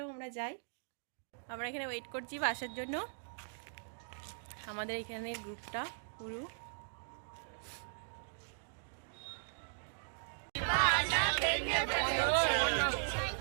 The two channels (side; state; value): left; silent; digital silence